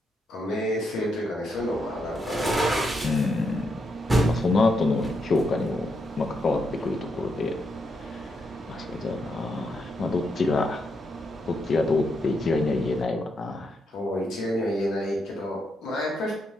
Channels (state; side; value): normal; both; correlation 0.80